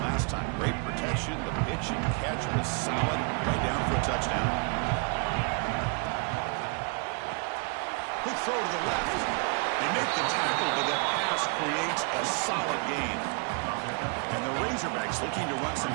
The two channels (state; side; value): quieter; left; 35.8 dB